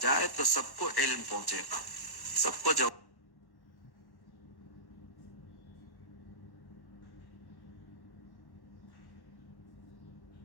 جائے تو سب کو علم پہنچے گا، سب کو جواب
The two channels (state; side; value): late; right; 1.1 ms